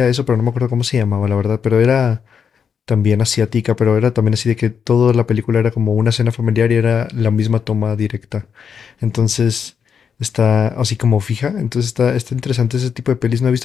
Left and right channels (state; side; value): quieter; right; 6.9 dB